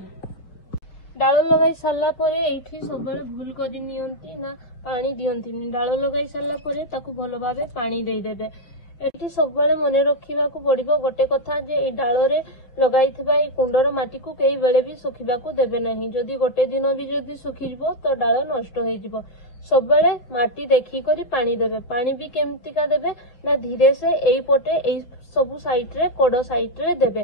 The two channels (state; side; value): late; right; 5.7 ms